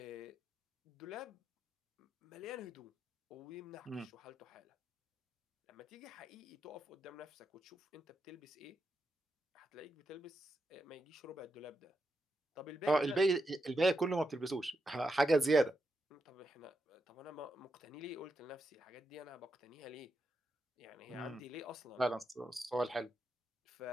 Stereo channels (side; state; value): both; normal; correlation 0.85